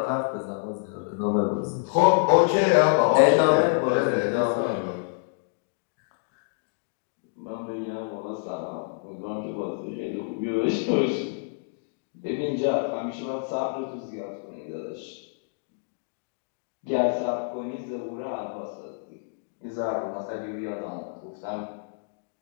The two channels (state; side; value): silent; right; digital silence